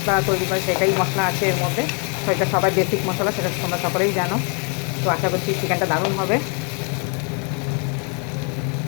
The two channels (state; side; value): quieter; right; 38.1 dB